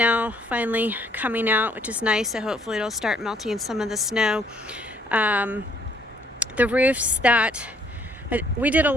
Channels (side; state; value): both; normal; correlation 0.64